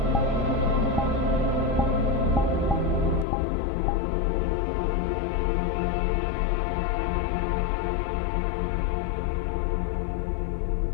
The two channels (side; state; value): right; drops out; at 3.2 s